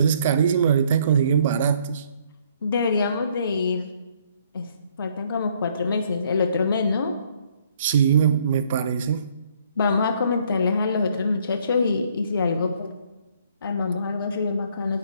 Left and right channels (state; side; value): inverted; both; correlation -0.65